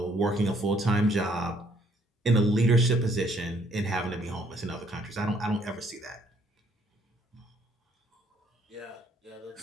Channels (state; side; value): normal; both; correlation 0.66